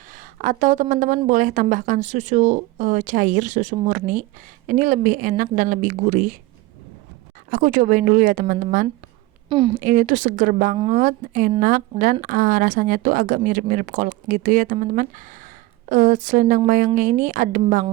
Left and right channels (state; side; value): quieter; left; 19.1 dB